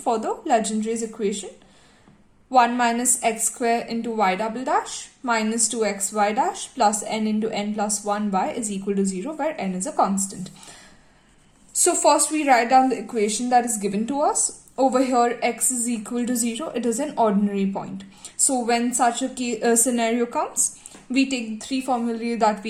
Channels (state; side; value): identical; both; correlation 1.00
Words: the Legendaries equation 1 minus x square into y double dash minus 2xy dash plus n into n plus 1y is equal to 0 where n is a constant. So first we write down the equation that is given to us. Over here x is equal to 0. It is an ordinary point. So when such a scenario comes, we take the three formulae that